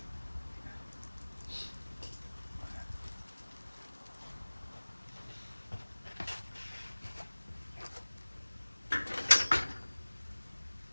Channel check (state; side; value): inverted; both; correlation -1.00